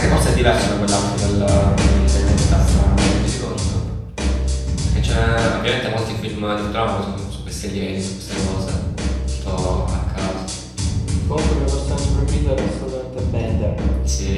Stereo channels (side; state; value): both; identical; correlation 1.00